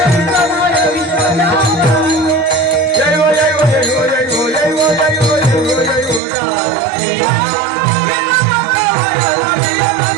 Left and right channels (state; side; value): drops out; left; at 6.2 s